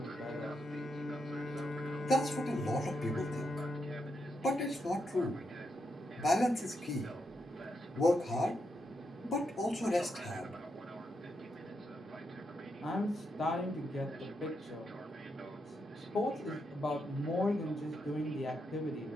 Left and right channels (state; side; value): normal; both; correlation 0.82